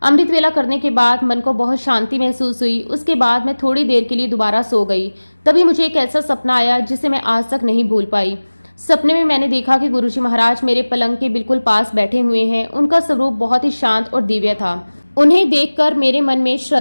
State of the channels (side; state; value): both; inverted; correlation -1.00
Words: अमृत वेला करने के बाद मन को बहुत शांति महसूस हुई। उसके बाद मैं थोड़ी देर के लिए दोबारा सो गई। तभी मुझे एक ऐसा सपना आया जिसे मैं आज तक नहीं भूल पाई। सपने में मैंने देखा कि गुरुजी महाराज मेरे पलंग के बिल्कुल पास बैठे हुए हैं। उनका स्वरूप बहुत ही शांत और दिव्य था। उन्हें देखकर मेरे मन में